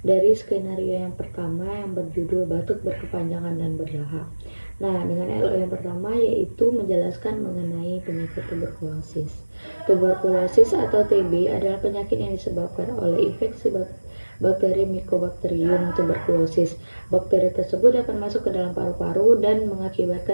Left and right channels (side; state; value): both; inverted; correlation -1.00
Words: dari skenario yang pertama yang berjudul batuk berkepanjangan dan berdahak. Nah, dengan LO yang pertama yaitu menjelaskan mengenai penyakit tuberkulosis. Tuberkulosis atau TB adalah penyakit yang disebabkan oleh infeksi bakteri Mycobacterium tuberculosis. Bakteri tersebut dapat masuk ke dalam paru-paru dan